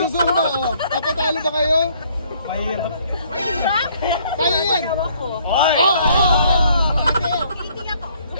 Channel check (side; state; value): both; inverted; correlation -0.63